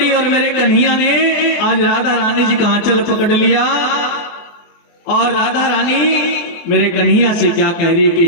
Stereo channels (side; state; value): right; late; 24 ms